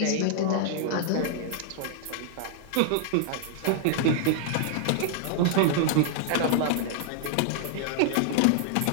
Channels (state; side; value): different; both; correlation -0.01